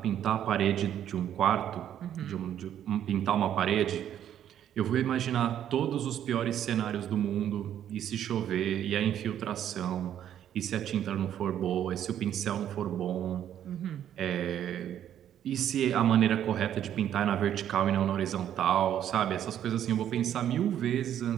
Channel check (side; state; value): left; quieter; 10.4 dB